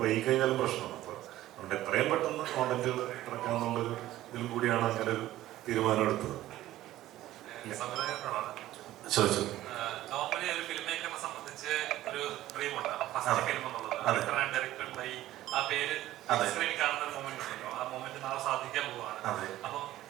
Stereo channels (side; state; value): left; quieter; 14.7 dB